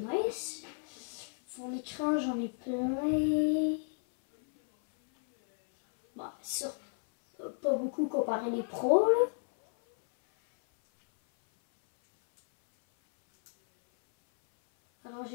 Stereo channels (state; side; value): silent; right; 56 dB below the other